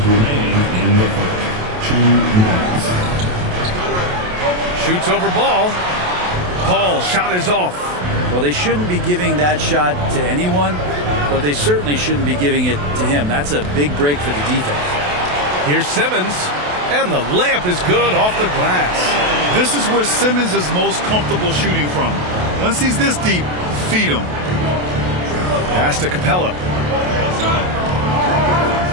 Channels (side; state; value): left; late; 28 ms